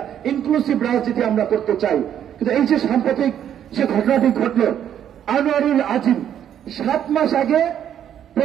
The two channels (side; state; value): left; quieter; 9.8 dB